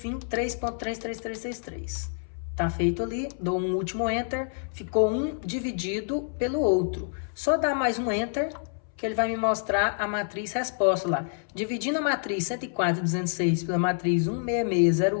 3.33333. Tá feito ali, dou um último Enter, ficou um dividido pelo outro. Só dá mais um Enter que ele vai me mostrar a matriz resposta lá. Dividindo a matriz 104.206 pela matriz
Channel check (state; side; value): silent; right; 60 dB below the other